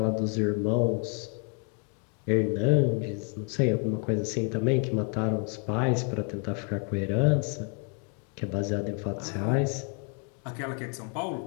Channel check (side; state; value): right; quieter; 39.5 dB